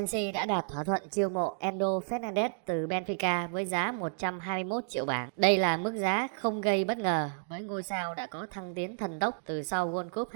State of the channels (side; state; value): left; silent; digital silence